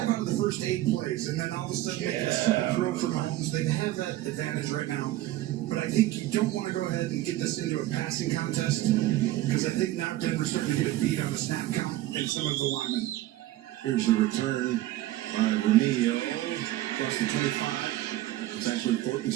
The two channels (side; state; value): left; quieter; 15.4 dB